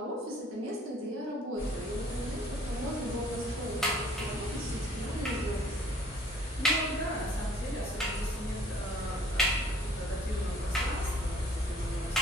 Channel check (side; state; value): both; normal; correlation 0.56